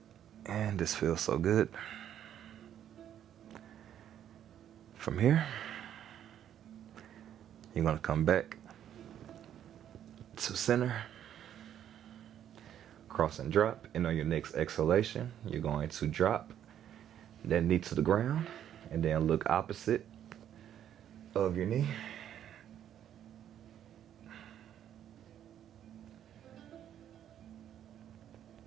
And this feels so good. From here, you're going to come back to center. Cross and drop. And on your next exhalation, you're going to drop that knee to the ground and then look opposite of your knee.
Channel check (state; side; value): quieter; left; 10.3 dB